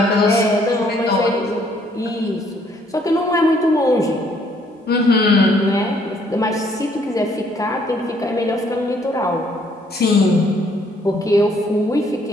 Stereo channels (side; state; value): both; normal; correlation 0.66